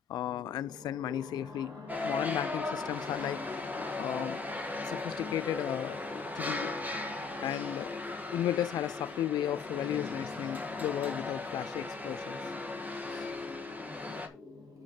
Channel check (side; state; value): right; quieter; 6.4 dB